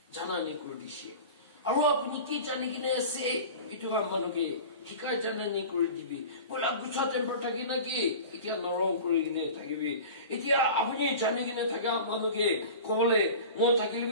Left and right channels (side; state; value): both; inverted; correlation -0.36